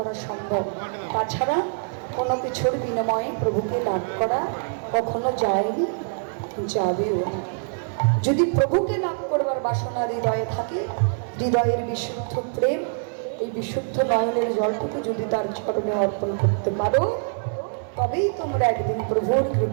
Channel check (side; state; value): left; silent; digital silence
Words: সম্ভব। তাছাড়া কোনো কিছুর বিনিময়ে প্রভুকে লাভ করা কখনো যায়নি, যাবেও না। যদি প্রভুকে লাভ করবার বাসনা হৃদয়ে থাকে, হৃদয়ের বিশুদ্ধ প্রেম, এই বিশুদ্ধ নয়নের জলটুকু যদি তার চরণে অর্পণ করতে পারো, তবেই তোমরা একদিন প্রভুর